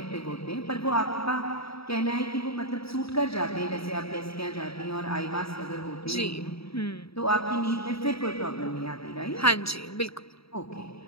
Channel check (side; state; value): right; late; 0.77 ms